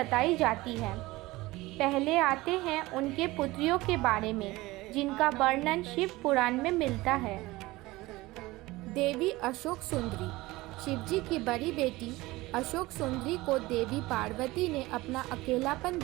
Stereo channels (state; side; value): quieter; left; 19.8 dB